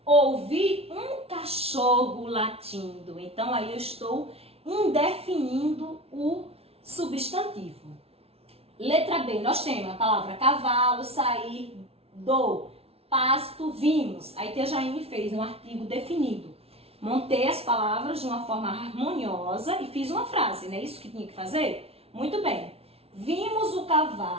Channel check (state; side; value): late; left; 0.29 ms